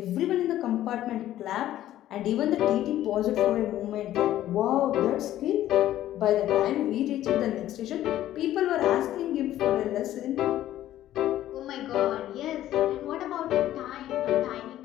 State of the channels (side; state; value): right; quieter; 13.2 dB